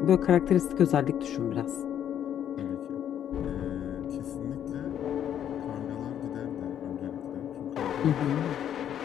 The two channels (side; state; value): right; quieter; 9.9 dB